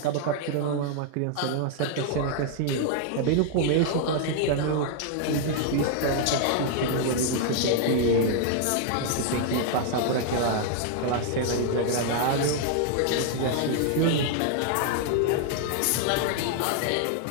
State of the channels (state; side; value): different; both; correlation 0.00